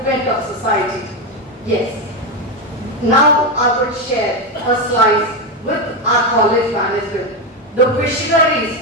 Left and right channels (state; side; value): normal; both; correlation 0.10